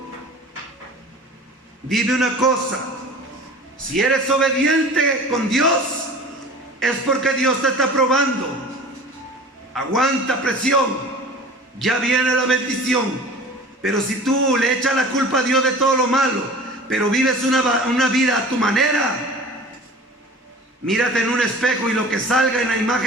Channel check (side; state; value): both; normal; correlation 0.41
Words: Dime una cosa: si eres obediente con Dios, es porque Dios te está probando. Aguanta presión, ya viene la bendición. Pero si tú le echas la culpa a Dios de todo lo malo, pero vives una vida a tu manera, mírate en un espejo y lo que salga en la